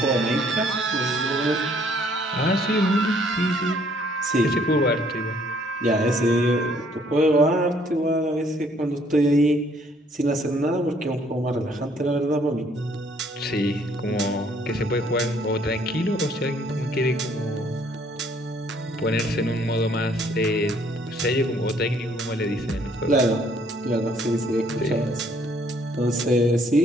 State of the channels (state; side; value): normal; both; correlation 0.63